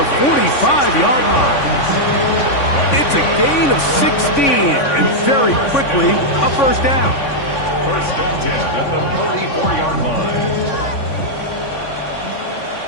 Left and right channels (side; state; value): right; late; 3.5 ms